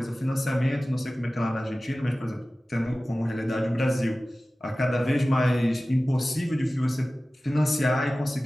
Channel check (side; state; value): both; normal; correlation 0.96